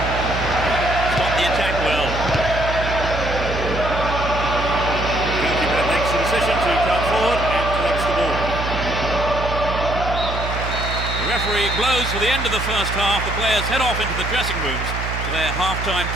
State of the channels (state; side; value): noise; right; hum, 5 dB below the sound